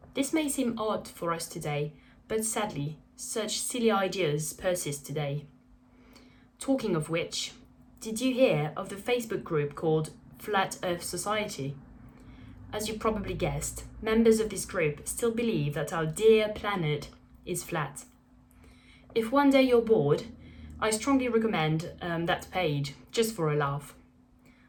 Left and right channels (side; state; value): both; identical; correlation 1.00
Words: This may seem odd for us today, but sadly, such silly ideas persist today. Talking of which, did you hear of the Facebook group called Flat Earth Society? As you probably guessed, members of this group still believe that our dear planet is flat. If one day you're bored, I strongly recommend that page, just for a laugh.